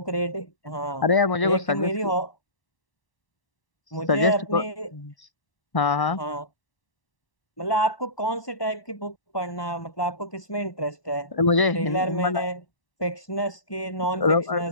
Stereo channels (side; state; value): right; late; 1.0 ms